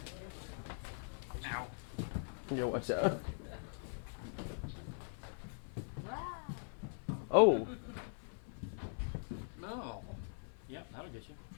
Ow. Yo, watch out. Oh. No. Yep, that'll get you.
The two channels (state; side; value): silent; right; 50 dB below the other